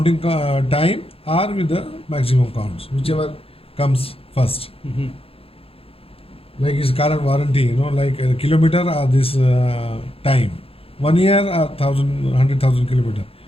time or with the maximum counts, whichever comes first. Like his current warranty, like a kilometer or this time, 1 year or 100,000 kilometer,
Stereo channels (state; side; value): late; right; 0.27 ms